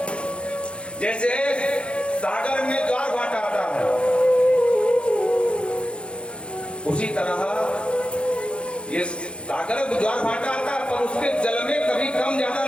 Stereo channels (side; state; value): right; late; 0.057 ms